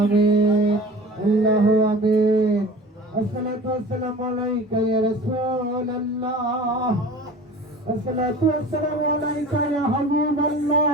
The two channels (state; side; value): normal; both; correlation 0.39